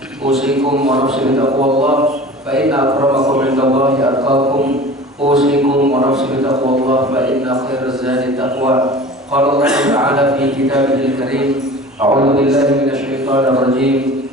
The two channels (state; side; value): normal; both; correlation 0.40